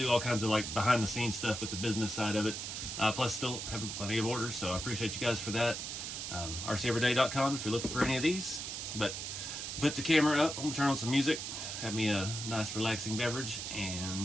do all kinds of like behind the scenes stuff with the business side of it. Plus still having plenty of orders, so I appreciate you guys for that. RCEveryday.com if you're looking for any of these. But put the camera up, I'm gonna turn on some music, have me a nice relaxing beverage,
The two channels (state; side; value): noise; right; hiss, 5 dB below the sound